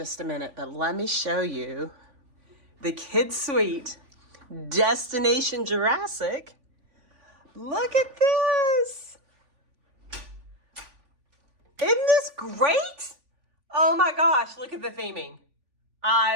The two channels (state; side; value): late; left; 3.5 ms